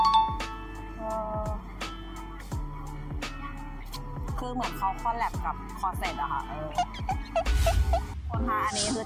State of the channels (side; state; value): both; identical; correlation 1.00